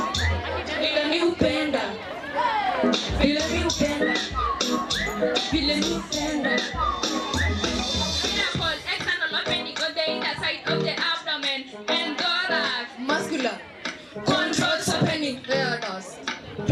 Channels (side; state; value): both; identical; correlation 1.00